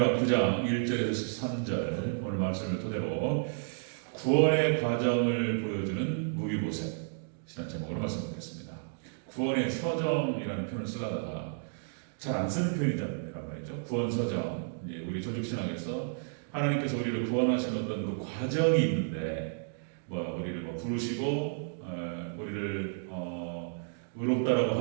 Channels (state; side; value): silent; left; digital silence